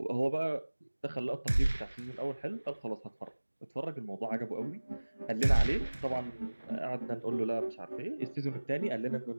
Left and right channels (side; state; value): both; inverted; correlation -1.00